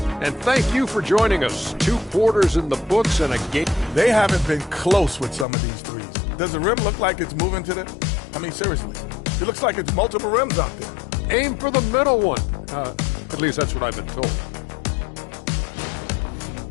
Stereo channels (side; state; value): right; drops out; at 5.5 s